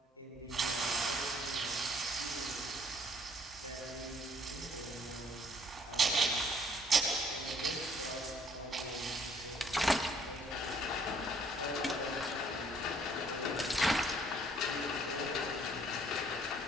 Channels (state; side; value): normal; both; correlation 0.62